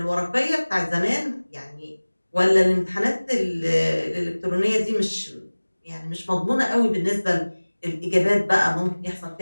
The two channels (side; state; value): both; inverted; correlation -1.00